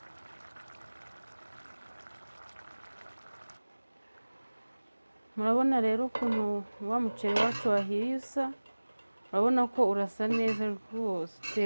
murabona rero ukuntu wa muceri wacu wahiye usa, urabona ko urasa neza rwose,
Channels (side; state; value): both; inverted; correlation -1.00